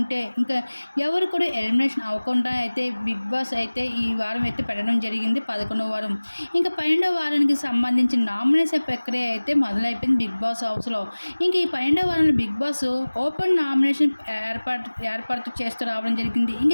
ఇంకా ఎవరు కూడా ఎలిమినేషన్ అవ్వకుండా అయితే బిగ్ బాస్ అయితే ఈ వారం అయితే పెట్టడం జరిగింది 11వ వారం. ఇంక 12వ వారానికి సంబంధించిన నామినేషన్ ప్రక్రియ అయితే మొదలైపోయింది బిగ్ బాస్ హౌస్‌లో. ఇంక ఈ 12వ వారంలో బిగ్ బాస్ ఓపెన్ నామినేషన్ ఏర్పాటు చేస్తూ రావడం జరిగింది. ఇంక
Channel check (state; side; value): inverted; both; correlation -1.00